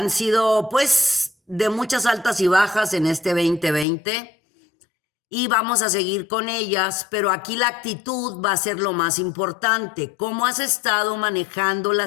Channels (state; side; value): drops out; right; at 3.9 s